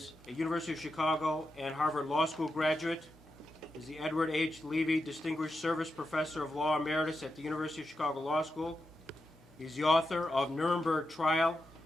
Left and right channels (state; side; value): normal; both; correlation 0.87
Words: a University of Chicago and Harvard Law School graduate, is the Edward H. Levy Distinguished Service Professor of Law Emeritus at the University of Chicago Law School. He's the author of Nuremberg Trial,